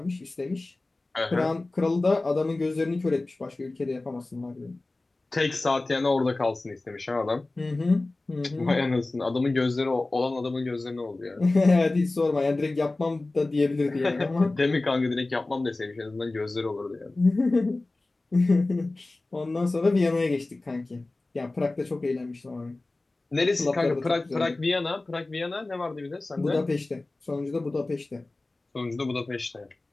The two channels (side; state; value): right; quieter; 3.1 dB